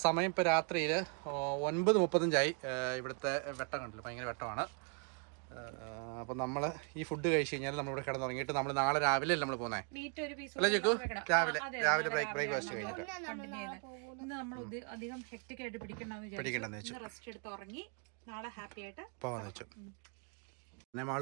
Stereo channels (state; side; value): quieter; left; 38.4 dB